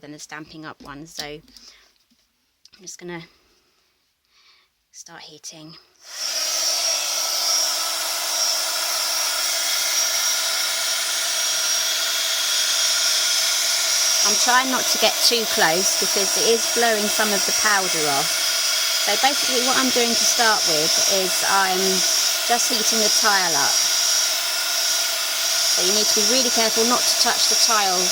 the Stampin'Up one. So I'm just going to start heating. I'm trying not to get too close because it is blowing some of the powder off. So basically what I'm doing to start with is I'm just heating the tile up. So you need to be really careful not to touch the tile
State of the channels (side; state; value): both; identical; correlation 1.00